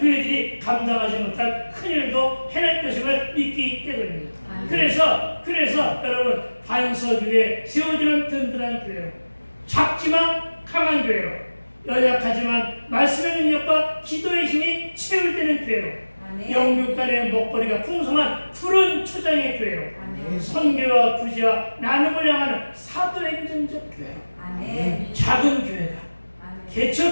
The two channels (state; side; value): inverted; both; correlation -1.00